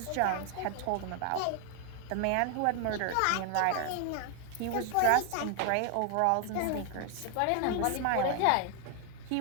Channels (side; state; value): both; different; correlation 0.00